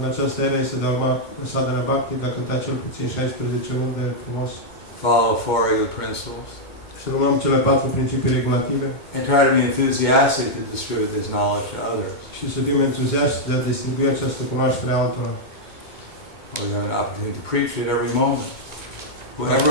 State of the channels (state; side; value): late; right; 2.2 ms